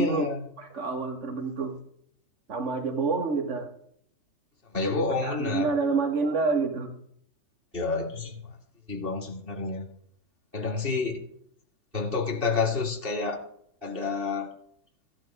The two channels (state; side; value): late; left; 2.7 ms